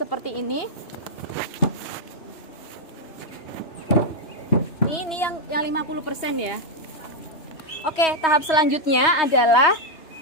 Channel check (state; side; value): late; right; 3.2 ms